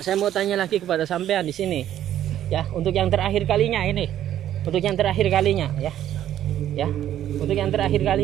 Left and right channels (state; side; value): quieter; left; 11.5 dB